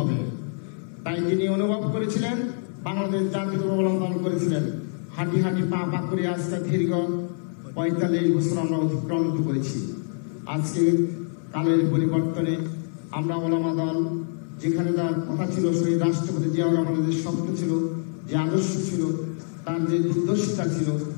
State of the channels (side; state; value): right; silent; 58 dB below the other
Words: তাই তিনি অনুভব করেছিলেন, বাংলাদেশ জাতীয়তাবাদী ওলামা দল করেছিলেন। হাঁটি হাঁটি পা পা করে আজকে দীর্ঘ 45 বছর আমরা অতিক্রান্ত করেছি। আজকে কালের পরিবর্তনে আমরা ওলামা দল যেখানে তার কথা ছিল, শহীদ রাষ্ট্রপতি জিয়াউর রহমানের যে স্বপ্ন ছিল, যে আদর্শ ছিল, তার যে দুর্দশা ছিল,